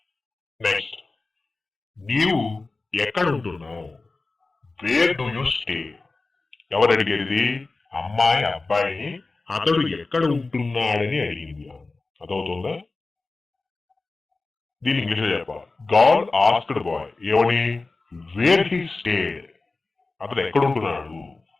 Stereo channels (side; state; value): right; quieter; 3.6 dB